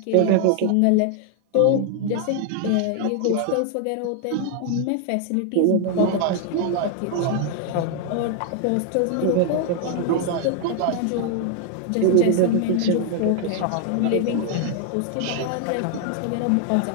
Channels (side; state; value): both; different; correlation 0.00